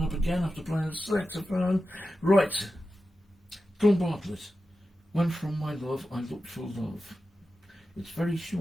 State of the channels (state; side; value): normal; both; correlation 0.92